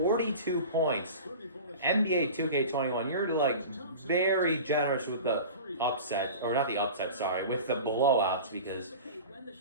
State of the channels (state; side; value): inverted; both; correlation -0.35